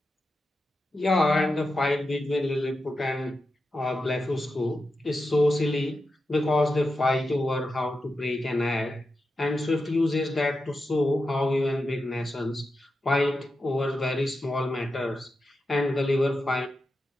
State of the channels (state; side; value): normal; both; correlation 0.89